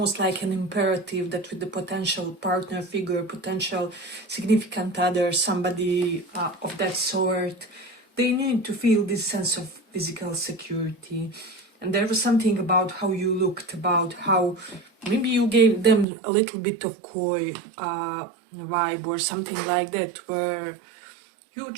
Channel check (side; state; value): left; drops out; at 16.1 s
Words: like an imperative that with the potential partner figure, potential significant other, somebody of that sort, they need to feel this sense of physical security. And there was something about how you looked, about how maybe you gave them a little bit of coy vibe or something like that, where you